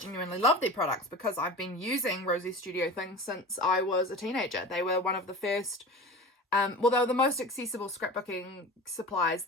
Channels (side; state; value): both; normal; correlation 0.33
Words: love their products because I've been using Rosie's Studio things since I was a teenager. They were one of the first, well, they were the most accessible scrapbooking supplies